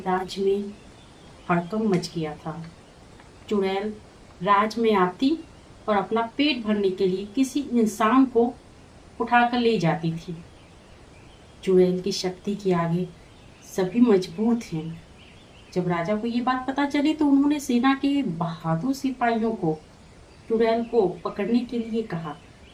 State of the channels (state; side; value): identical; both; correlation 1.00